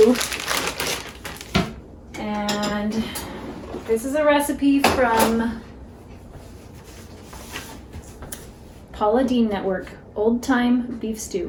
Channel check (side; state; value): both; identical; correlation 1.00